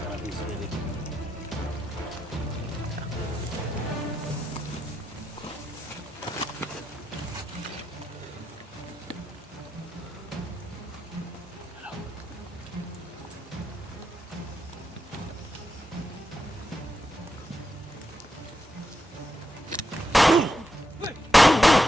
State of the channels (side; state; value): both; normal; correlation 0.85